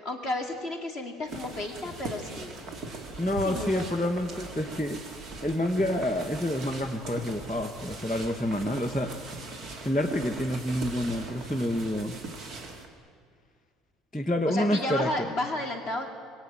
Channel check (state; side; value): normal; both; correlation 0.72